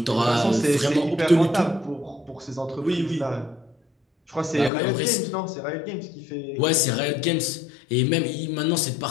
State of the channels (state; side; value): drops out; right; at 4.7 s